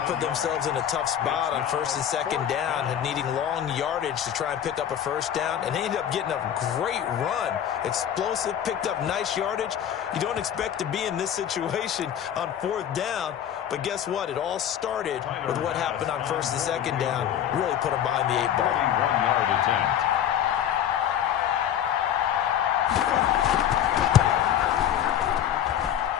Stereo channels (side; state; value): right; quieter; 10.0 dB